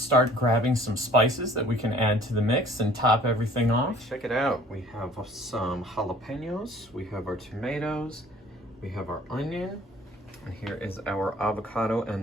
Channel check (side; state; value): both; normal; correlation 0.53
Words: grabbing some spices that we can add to the mix and top everything off. Check it out. We have some jalapenos, we have our tomatoes, we have our onion, and here is our avocado